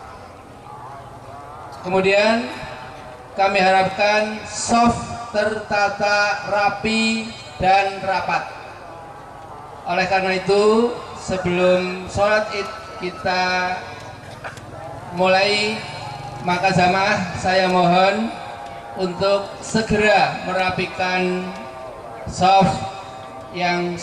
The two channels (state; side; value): identical; both; correlation 1.00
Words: Kemudian kami harapkan soft, tertata, rapi dan rapat. Oleh karena itu, sebelum sholat id kita mulai, maka jamaah saya mohon untuk segera merapikan soft yang